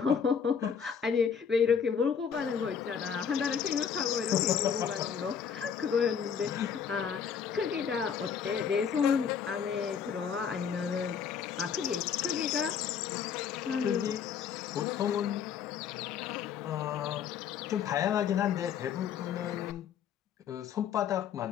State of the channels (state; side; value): quieter; right; 7.4 dB